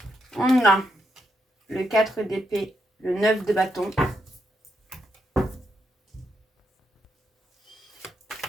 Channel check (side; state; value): both; normal; correlation 0.81